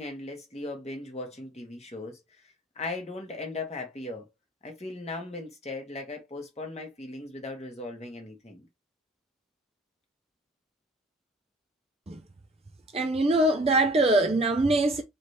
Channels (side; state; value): both; normal; correlation 0.50